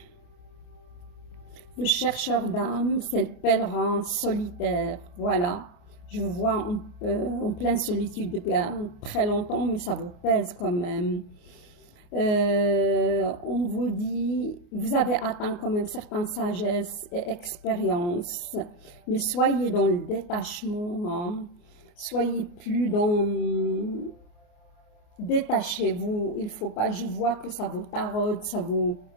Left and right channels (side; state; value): right; late; 29 ms